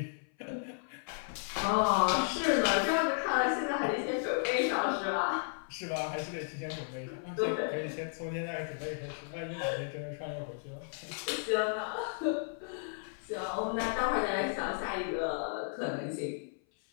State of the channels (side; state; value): right; silent; 55 dB below the other